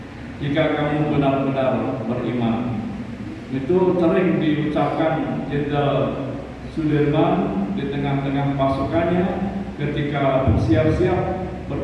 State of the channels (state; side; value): identical; both; correlation 1.00